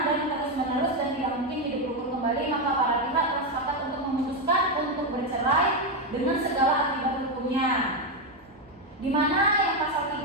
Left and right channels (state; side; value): normal; both; correlation 0.07